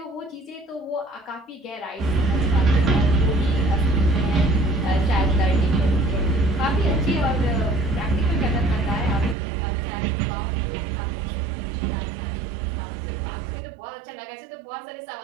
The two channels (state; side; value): drops out; left; at 9.3 s